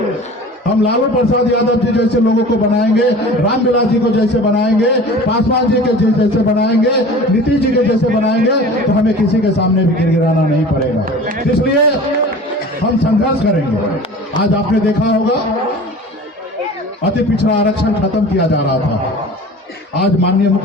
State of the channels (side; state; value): both; normal; correlation 0.40